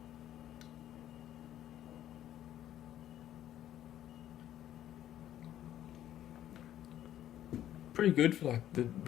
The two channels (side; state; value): right; quieter; 11.9 dB